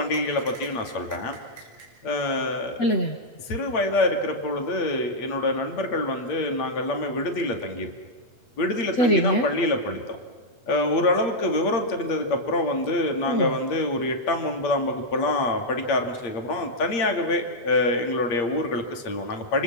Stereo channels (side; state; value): right; late; 8.6 ms